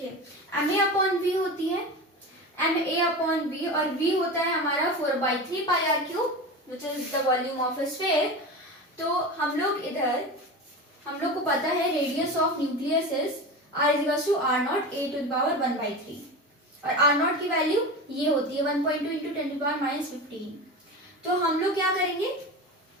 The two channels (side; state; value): both; normal; correlation 0.27